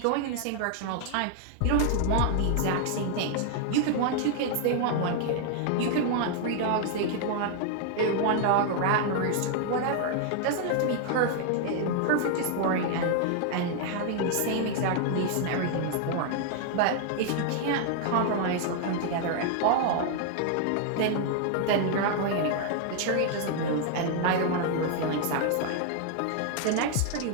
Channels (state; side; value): different; both; correlation 0.00